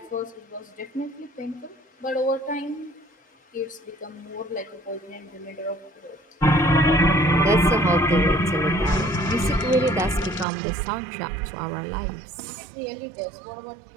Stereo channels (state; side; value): drops out; left; at 10.5 s